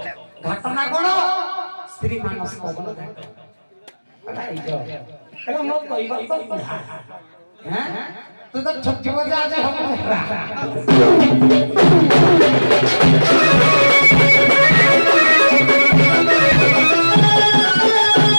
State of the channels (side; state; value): both; inverted; correlation -1.00